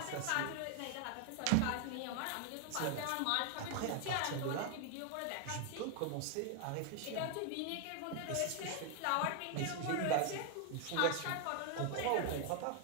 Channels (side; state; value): both; different; correlation 0.00